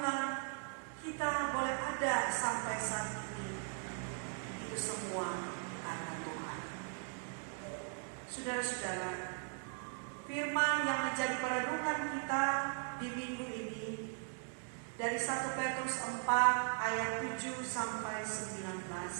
kita boleh ada sampai saat ini. Itu semua karena Tuhan. Saudara-saudara, firman yang menjadi perenungan kita di minggu ini dari 1 Petrus 4 ayat 7 sampai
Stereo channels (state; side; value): silent; left; 52 dB below the other